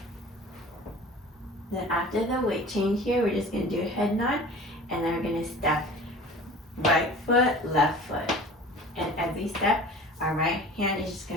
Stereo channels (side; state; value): both; normal; correlation 0.41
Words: Then after the weight change here, we're just going to do a head nod, and then we're going to step right foot, left foot. And as we step, our right hand is just